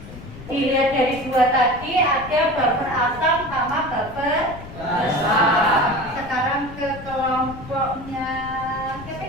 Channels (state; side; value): noise; left; rumble, 15 dB below the sound